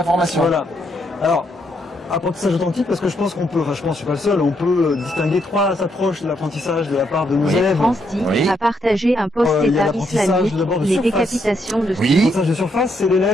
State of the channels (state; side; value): normal; both; correlation 0.76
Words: formation. Voilà. Alors, apprentissage authentique parce que je pense qu'on peut, enfin je pense, je suis pas le seul, on peut distinguer trois approches de l'apprentissage de la part de nos élèves. France dit a partagé un post État islamique, les décapitations de l'apprentissage de surface, c'est